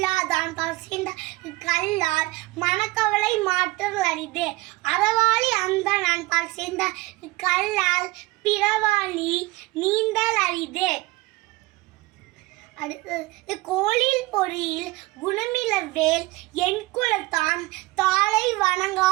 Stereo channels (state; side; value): quieter; left; 21.3 dB